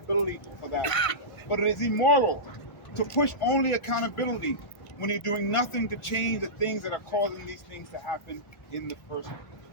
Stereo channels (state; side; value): late; right; 1.5 ms